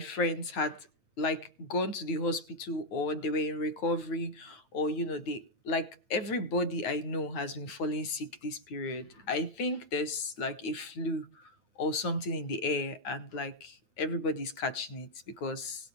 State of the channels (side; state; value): right; late; 9.0 ms